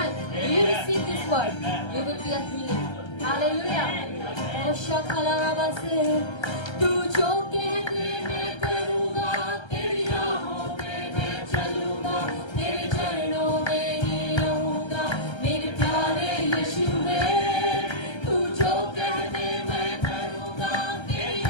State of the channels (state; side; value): late; right; 1.3 ms